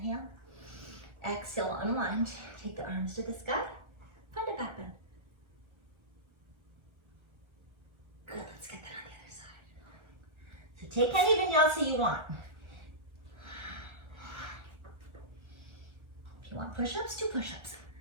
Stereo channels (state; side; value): late; left; 1.3 ms